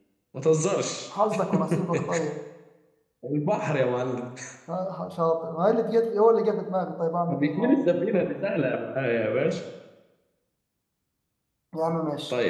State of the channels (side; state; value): both; identical; correlation 1.00